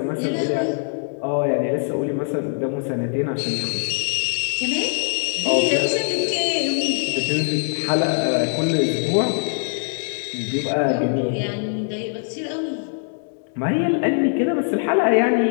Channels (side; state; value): right; silent; 63 dB below the other